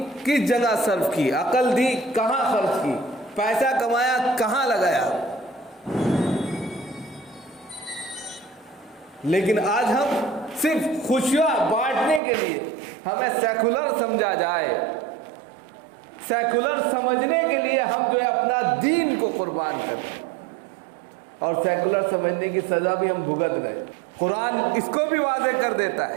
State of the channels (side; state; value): left; drops out; at 12.2 s